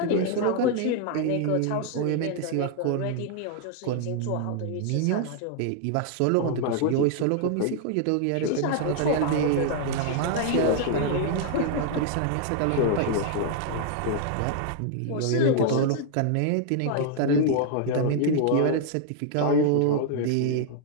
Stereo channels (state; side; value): different; both; correlation 0.00